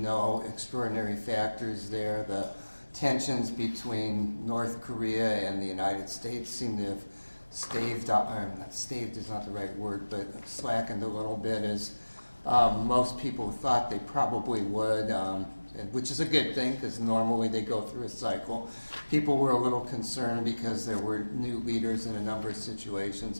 extraordinary factors there. The tensions between North Korea and the United States seem to have staved is not the right word, but slackened a little bit, as most people thought they probably would, which is a good thing because normally they go through a cycle. People were a little concerned because there were new leaders in a number of situations,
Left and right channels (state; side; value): inverted; both; correlation -1.00